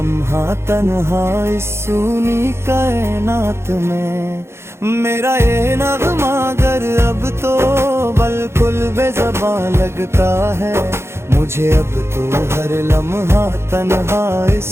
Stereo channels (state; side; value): late; left; 0.12 ms